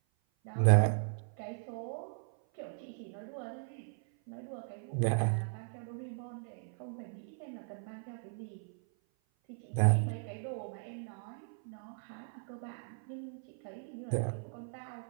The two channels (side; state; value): left; silent; 53 dB below the other